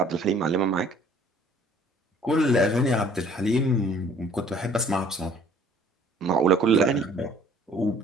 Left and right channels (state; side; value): normal; both; correlation 0.56